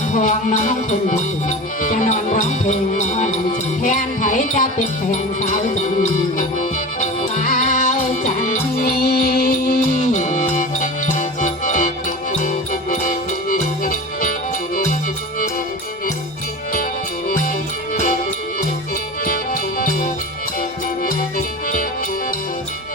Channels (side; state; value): both; normal; correlation 0.32